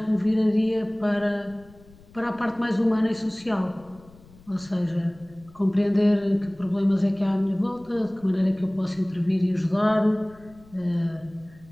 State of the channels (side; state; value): left; noise; rumble, 25 dB below the sound